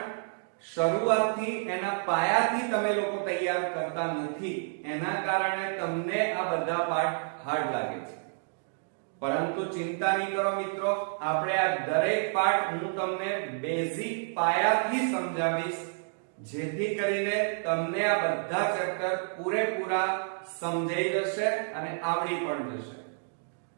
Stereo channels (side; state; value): left; silent; digital silence